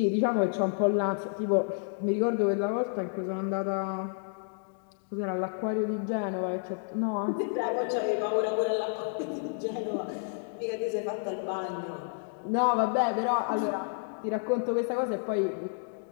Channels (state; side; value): silent; right; digital silence